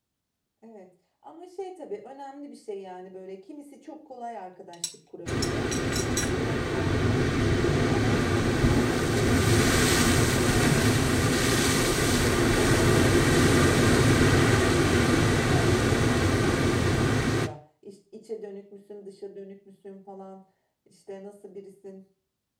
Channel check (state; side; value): identical; both; correlation 1.00